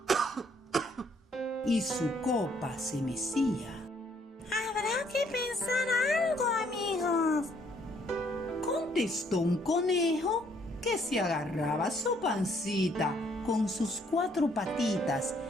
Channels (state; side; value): normal; both; correlation 0.67